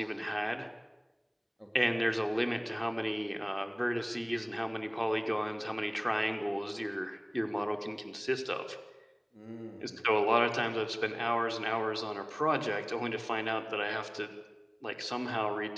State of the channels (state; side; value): identical; both; correlation 1.00